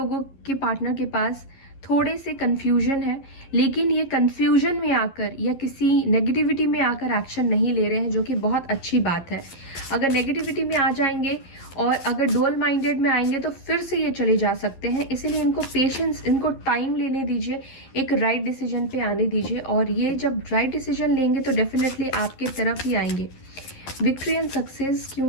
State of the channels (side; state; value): right; late; 12 ms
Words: के पार्टनर के पास थोड़े से कंफ्यूजन है, लेकिन ये कंफ्यूजन में आकर या किसी नेगेटिविटी में आकर एक्शन नहीं ले रहे हैं, जो कि बहुत अच्छी बात है। अगर नेगेटिविटी में आ जाएंगे और अगर डुअल माइंडेड में आएंगे तो फिर से ये चले जा सकते हैं। इसीलिए इनको पेशेंस, इनको टाइम लेने दीजिए, एक राइट डिसीजन पे आने दीजिए, और ये जब राइट डिसीजन लेंगे तो डेफिनेटली आपके तरफ ही आएंगे। विक्ट्री एंड सक्सेस